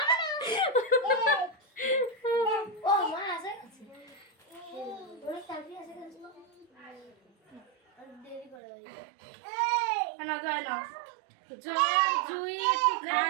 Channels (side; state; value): left; drops out; at 8.6 s